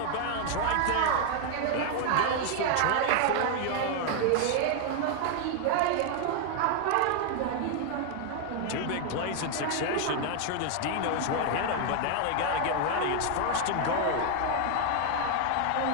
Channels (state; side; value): different; both; correlation 0.00